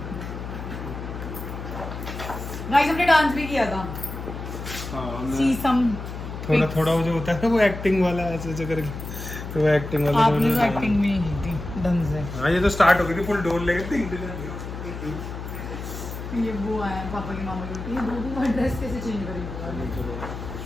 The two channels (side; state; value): left; noise; hum, 8 dB below the sound